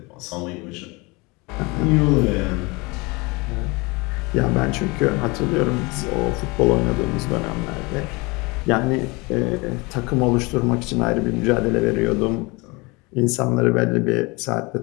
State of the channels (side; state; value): right; quieter; 25.9 dB